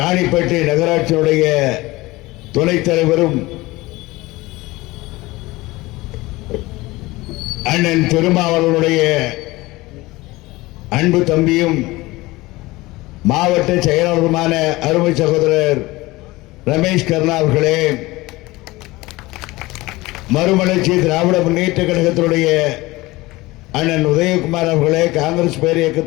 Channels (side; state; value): right; quieter; 20.5 dB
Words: நகராட்சியினுடைய துணைத் தலைவரும் அண்ணன் திருமாவளவனுடைய அன்பு தம்பியும் மாவட்ட செயலாளருமான அருமை சகோதரர் ரமேஷ் கர்ணா அவர்களே, மறுமலர்ச்சி திராவிட முன்னேற்ற கழகத்தினுடைய அண்ணன் உதயகுமார் அவர்களே, காங்கிரஸ் பேர்